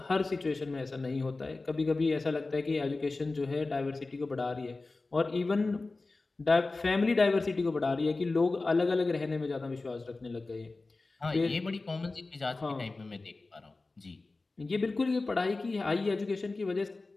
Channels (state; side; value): quieter; right; 3.5 dB